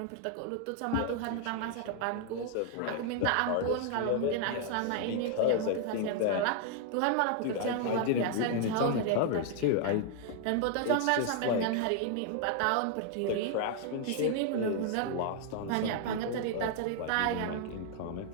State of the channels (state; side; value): different; both; correlation 0.00